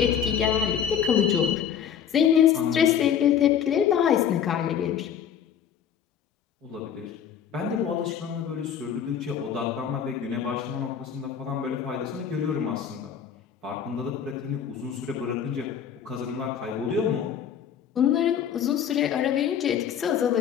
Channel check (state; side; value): quieter; right; 8.5 dB